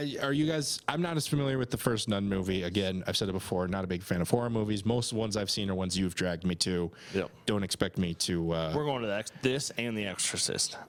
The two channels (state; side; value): identical; both; correlation 1.00